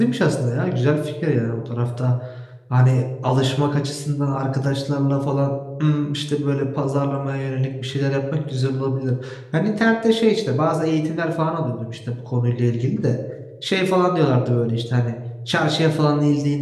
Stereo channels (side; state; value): both; identical; correlation 1.00